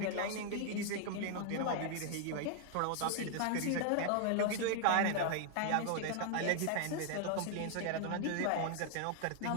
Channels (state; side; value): different; both; correlation 0.00